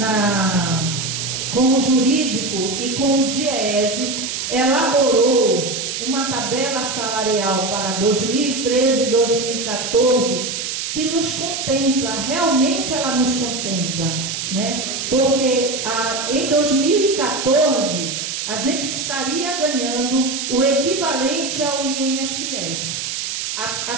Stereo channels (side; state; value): right; noise; hiss, 4 dB below the sound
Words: com o jurídico e com o DIEESE, elaborou uma tabela salarial para 2013 e 2014 que nos contempla, realmente ela nos contempla, né? Porque em 2014 a gente estaria ganhando o equivalente ao INSS.